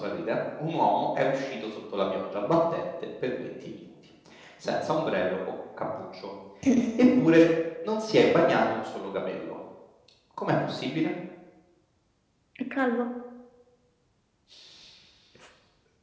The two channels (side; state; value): both; identical; correlation 1.00